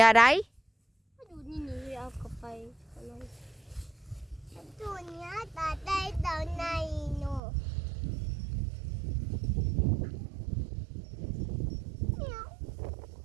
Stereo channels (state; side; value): drops out; left; at 7.4 s